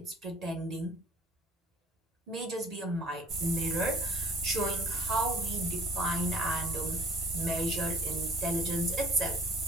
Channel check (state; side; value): normal; both; correlation 0.52